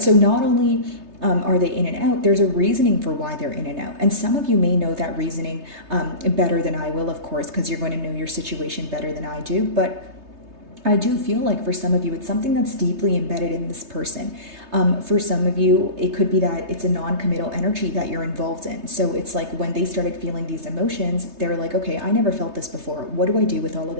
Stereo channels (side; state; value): left; late; 3.3 ms